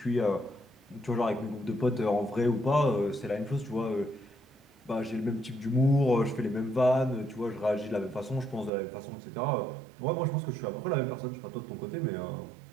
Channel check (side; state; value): left; drops out; at 8.7 s